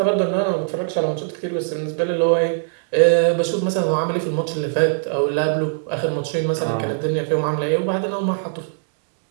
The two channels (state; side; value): silent; left; digital silence